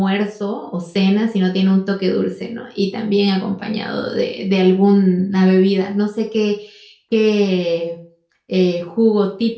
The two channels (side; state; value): both; identical; correlation 1.00